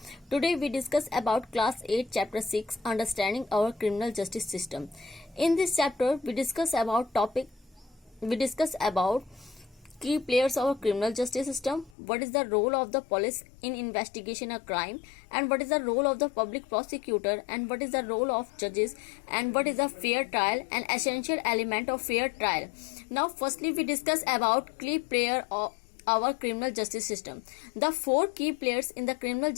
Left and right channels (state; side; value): drops out; right; at 12.0 s